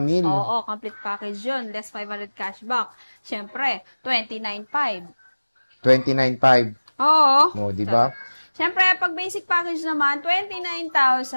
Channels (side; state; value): both; inverted; correlation -1.00